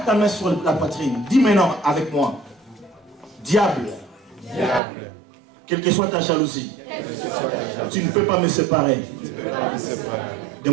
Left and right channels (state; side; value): drops out; left; at 4.8 s